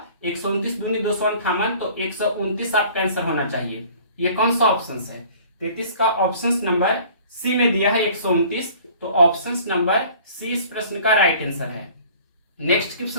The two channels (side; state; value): both; inverted; correlation -0.50